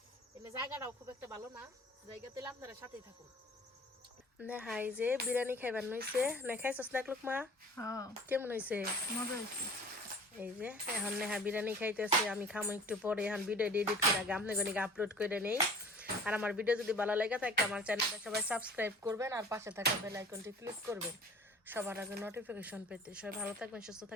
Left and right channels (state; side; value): normal; both; correlation 0.45